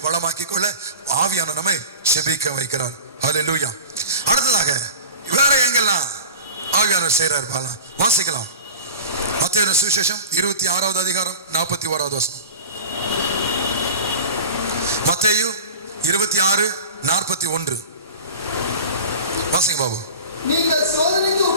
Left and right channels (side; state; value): both; inverted; correlation -0.36